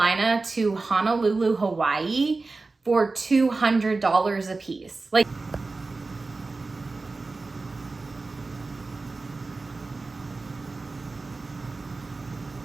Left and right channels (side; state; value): left; quieter; 3.6 dB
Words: to Honolulu, Hawaii for $200 a piece. Like,